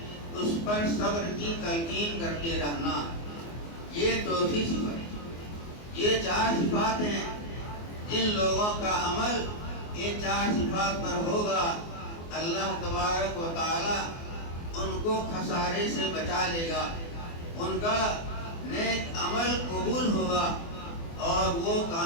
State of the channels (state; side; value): late; right; 24 ms